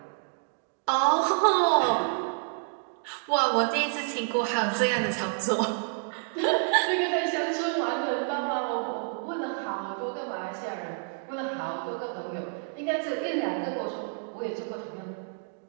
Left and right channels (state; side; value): silent; left; 59 dB below the other